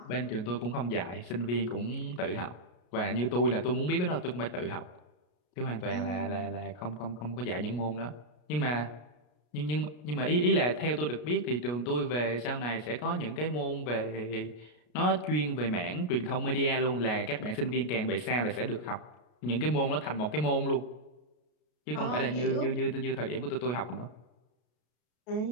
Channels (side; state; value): right; late; 33 ms